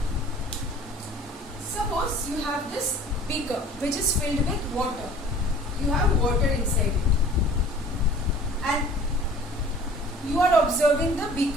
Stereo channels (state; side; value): normal; both; correlation 0.48